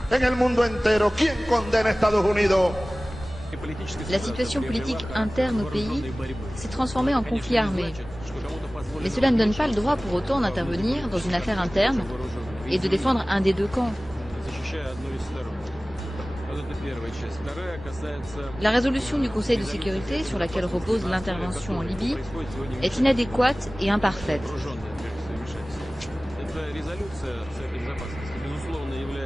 en el mundo entero? ¿Quién condena a Estados Unidos? La situation politique interne au pays s'est transformée en conflit armé. Mais cela ne donne pas le droit pour autant d'intervenir dans une affaire interne et de défendre un des deux camps. La résolution du Conseil de sécurité sur laquelle repose l'intervention en Libye est inadéquate et imparfaite.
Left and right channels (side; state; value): both; normal; correlation 0.98